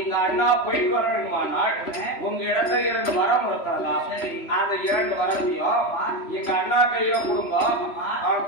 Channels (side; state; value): right; late; 3.0 ms